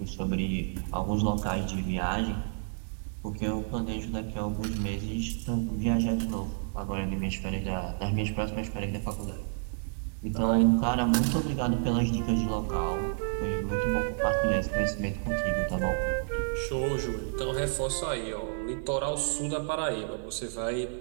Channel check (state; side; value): silent; left; 58 dB below the other